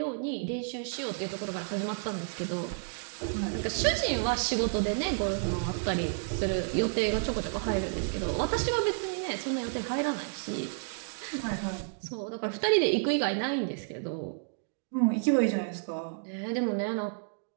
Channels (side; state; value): left; silent; digital silence